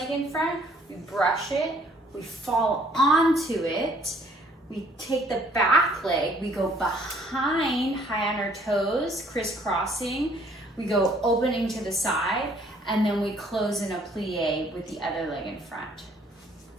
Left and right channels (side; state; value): both; normal; correlation 0.61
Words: in front, we brush it, we fall onto it, we take the back leg, we go behind, high on our toes, crisscrossing, we go opening to the side, and then we close in a plie with the other leg in front.